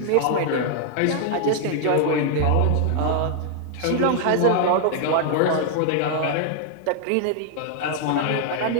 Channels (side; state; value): both; different; correlation 0.00